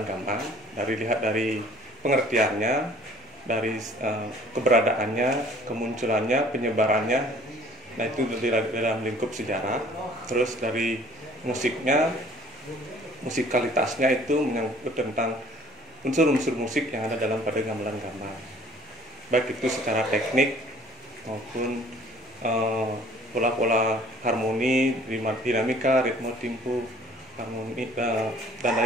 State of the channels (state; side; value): normal; both; correlation 0.53